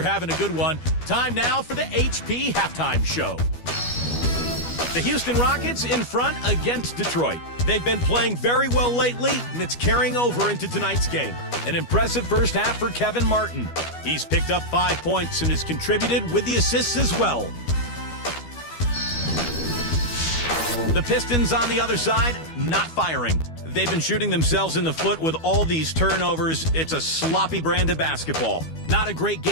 having a good one. Time now for the HP Halftime Show. The Houston Rockets in front against Detroit. They've been playing very well lately, and it's carrying over into tonight's game. An impressive first half for Kevin Martin. He's picked up 5 points and has contributed with the assists as well. The Pistons on the other side, not firing. They've been shooting themselves in the foot with all these turnovers. It's a sloppy brand of basketball. Not a great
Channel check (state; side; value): late; right; 12 ms